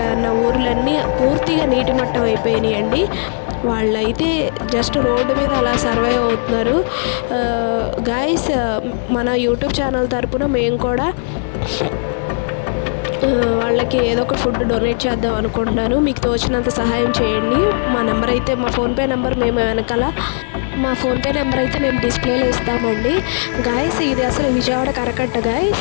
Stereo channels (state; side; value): silent; right; 59 dB below the other